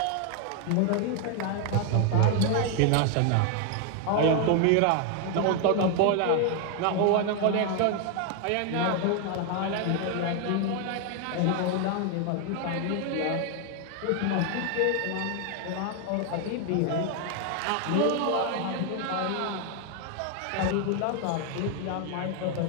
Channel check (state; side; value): different; both; correlation 0.01